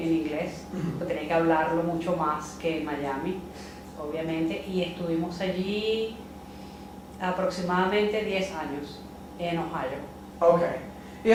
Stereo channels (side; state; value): both; identical; correlation 1.00